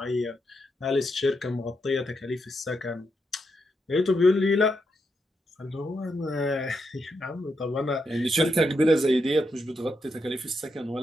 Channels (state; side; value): normal; both; correlation 0.82